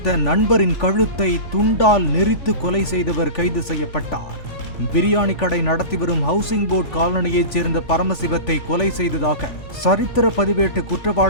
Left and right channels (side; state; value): right; late; 3.4 ms